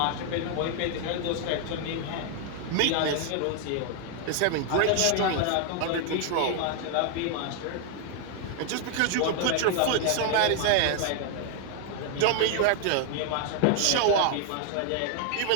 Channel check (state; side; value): different; both; correlation 0.00